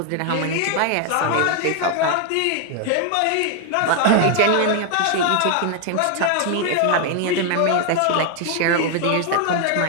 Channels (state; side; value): different; both; correlation 0.00